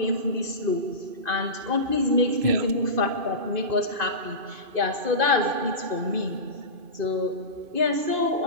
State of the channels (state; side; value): late; left; 2.5 ms